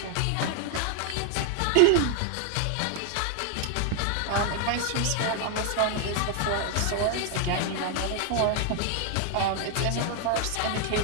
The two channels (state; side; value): different; both; correlation 0.00